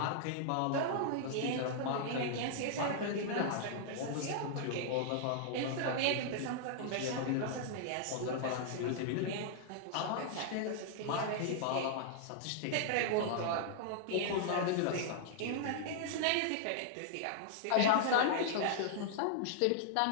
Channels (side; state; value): both; different; correlation -0.01